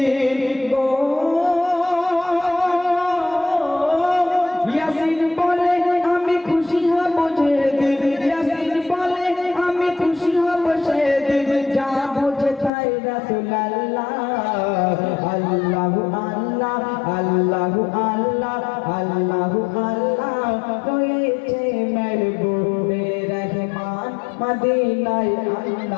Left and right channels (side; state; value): right; drops out; at 12.7 s